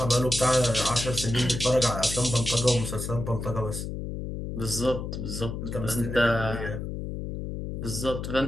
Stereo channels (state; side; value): noise; left; hum, 5 dB below the sound